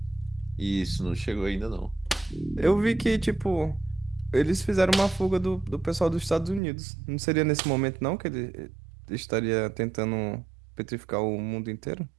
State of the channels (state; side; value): drops out; left; at 6.6 s